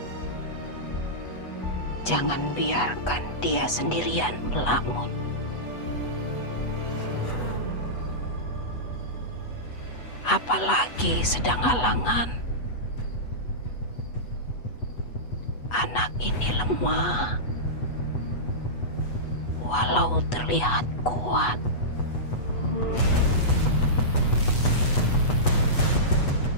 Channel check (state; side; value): late; right; 8.1 ms